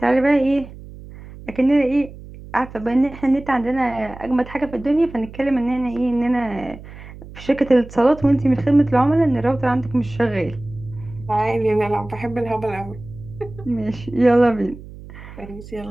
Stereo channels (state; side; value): noise; right; hum, 16 dB below the sound